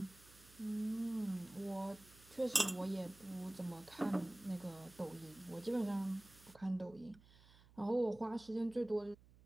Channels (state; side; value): noise; right; hum, 24 dB below the sound